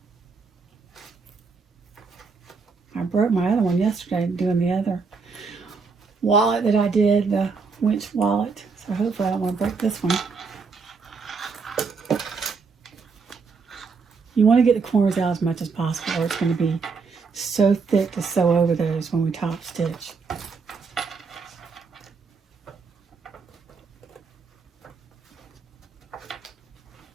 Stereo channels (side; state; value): left; quieter; 4.9 dB